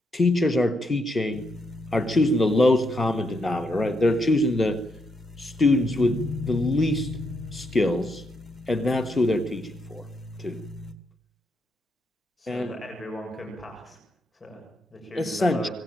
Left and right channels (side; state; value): both; normal; correlation 0.79